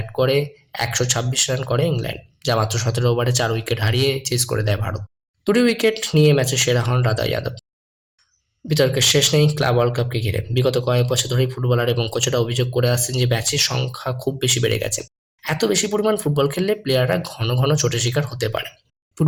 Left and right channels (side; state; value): both; identical; correlation 1.00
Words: করে ১২৬ রান করে ইংল্যান্ড, যা মাত্র ১৭ ওভারে ৪ উইকেট হারিয়ে চেস করে দেয় ভারত। ২টি উইকেট নিয়ে ম্যাচে সেরা হন রাধা যাদব। বিতর্কের শেষ নেই ক্লাব ওয়ার্ল্ড কাপকে ঘিরে। বিগত কয়েক বছর ধরেই ফুটবলার এবং কোচেরা অভিযোগ করে আসছেন যে ম্যাচের সংখ্যা খুব বেশি বেড়ে গেছে। এত বেশি পরিমাণ ফুটবল খেললে প্লেয়াররা ঘন ঘন চোটের শিকার হতে পারে।